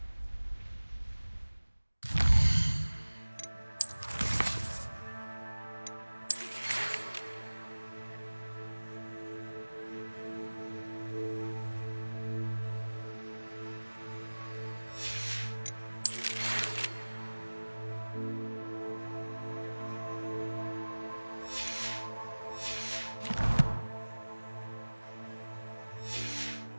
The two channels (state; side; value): inverted; both; correlation -1.00